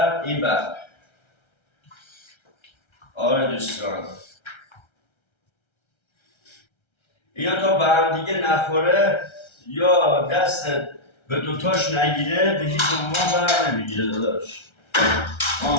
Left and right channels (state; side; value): late; right; 1.3 ms